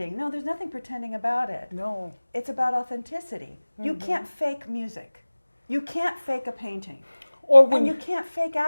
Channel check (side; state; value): both; inverted; correlation -1.00